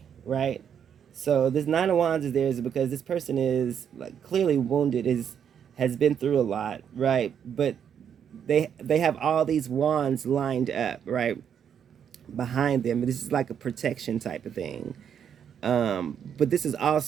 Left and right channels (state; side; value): quieter; left; 8.3 dB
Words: right? So this Nine of Wands is there is because this person is like clearly wounded, is has been through a lot, right? But they have all these wands lined up, right, behind them. This is like a protection type of thing. But this is